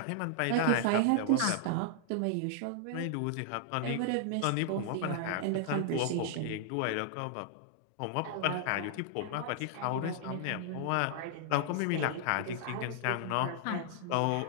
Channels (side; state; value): both; different; correlation -0.01